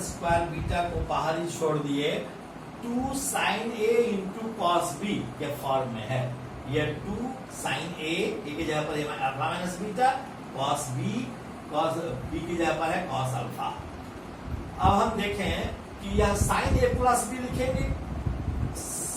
square beta को बाहर ही छोड़ दिए, 2 साइन ए इंटू कॉस बी के फॉर्म में है। ये 2 साइन ए की जगह पर alpha minus beta, cos b की जगह पर है कॉस अल्फा। अब हम देखें कि यह साइन ए प्लस बी लिखेंगे,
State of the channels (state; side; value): identical; both; correlation 1.00